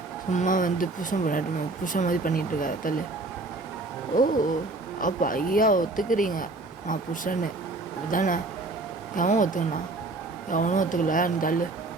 சும்மா வந்து புருஷன் மாதிரி பண்ணிகிட்ருக்காரு, தள்ளு. ஓ அப்போ ஐயா ஒத்துக்கிறீங்க நான் புருஷன்னு அப்படிதானே? எவன் ஒத்துக்கண்ணா? எவனும் ஒத்துக்கல, நீ தள்ளு.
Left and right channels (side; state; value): left; quieter; 3.2 dB